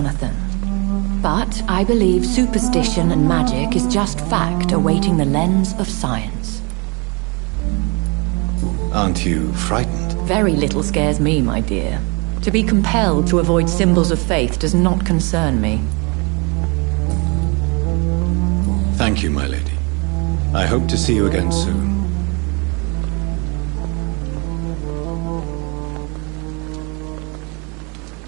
But I believe superstition and magic is just fact awaiting the lens of science. Aren't you frightened? Very little scares me, my dear. To be compelled to avoid symbols of faith does not concern me. Thank you, my lady. I hope to see you again soon.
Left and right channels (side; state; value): left; quieter; 30.9 dB